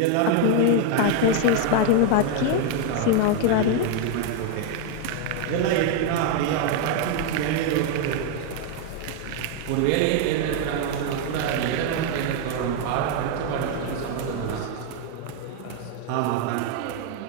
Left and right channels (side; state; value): both; different; correlation 0.00